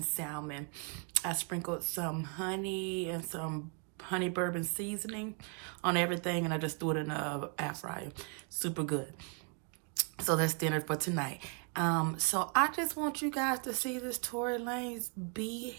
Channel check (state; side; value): quieter; left; 37.7 dB